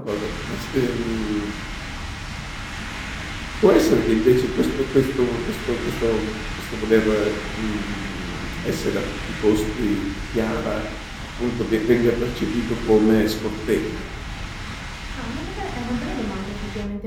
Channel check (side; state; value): both; identical; correlation 1.00